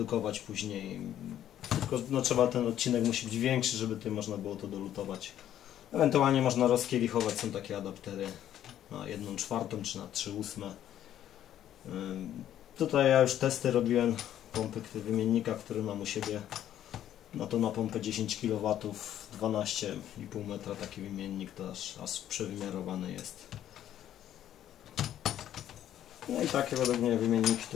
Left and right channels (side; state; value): right; quieter; 11.3 dB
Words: później. Tylko no, trzeba, ten odcinek musi być większy, żeby tutaj można było to dolutować. Ewentualnie można rozkielichować, są takie adaptery na 1/4 czy na 3/8. Tutaj ja już testy robiłem pompy wymiennika, który mam u siebie. No to na pompę 10 kW, 12,5 metra taki wymiennik, to aż przewymiarowany jest. No i takie według mnie wymienniki